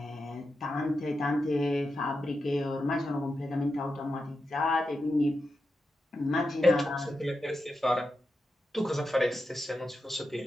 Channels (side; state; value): both; normal; correlation 0.88